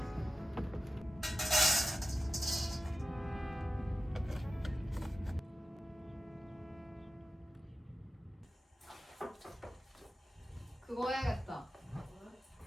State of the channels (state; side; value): normal; both; correlation 0.95